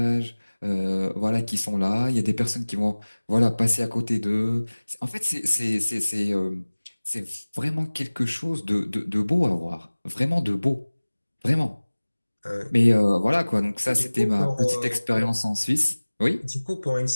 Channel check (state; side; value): inverted; both; correlation -1.00